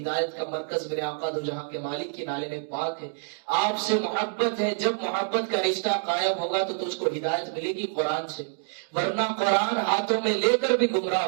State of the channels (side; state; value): left; silent; digital silence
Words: کا مرکز میرے آقا دو جہاں کے مالک کی نالے میں پاک ہے، آپ سے محبت ہے، جب محبت کا رشتہ قائم ہوگا تو تجھ کو ہدایت ملے گی قرآن سے، ورنہ قرآن ہاتھوں میں لے کر بھی گمراہ